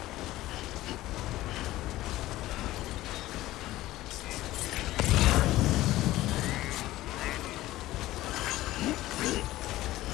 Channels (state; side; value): quieter; right; 16.3 dB